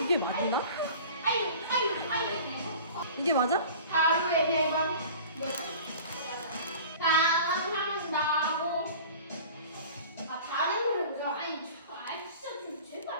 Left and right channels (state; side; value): inverted; both; correlation -0.41